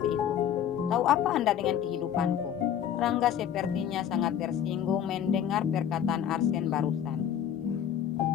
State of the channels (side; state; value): right; quieter; 9.5 dB